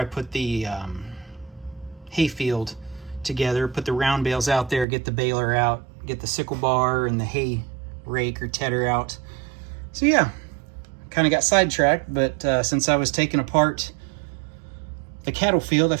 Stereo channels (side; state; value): left; drops out; at 4.9 s